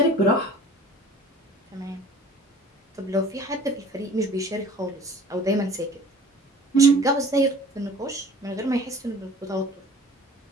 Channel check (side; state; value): both; normal; correlation 0.47